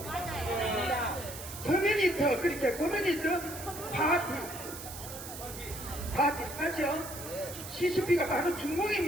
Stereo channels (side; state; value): right; noise; hiss, 11 dB below the sound